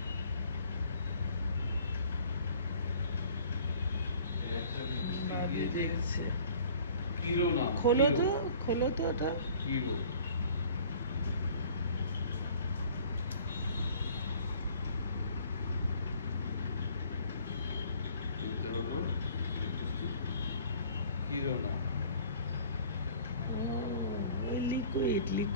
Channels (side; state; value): both; inverted; correlation -0.51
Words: খোলো তো ওটা। কিরো হলো কিরোনা।